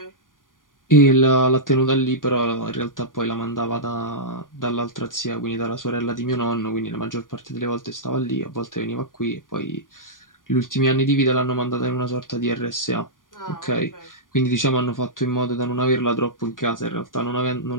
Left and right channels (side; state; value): right; late; 0.89 ms